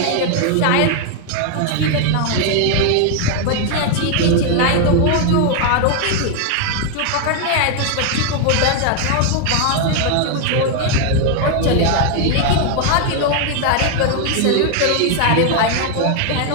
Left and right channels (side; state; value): both; different; correlation 0.00